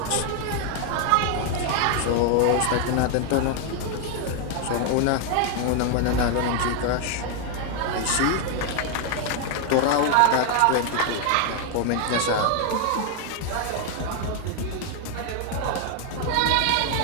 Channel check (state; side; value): different; both; correlation 0.00